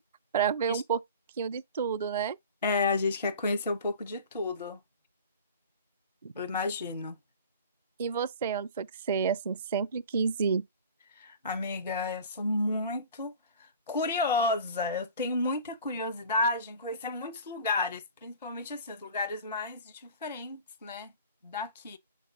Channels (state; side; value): inverted; both; correlation -0.40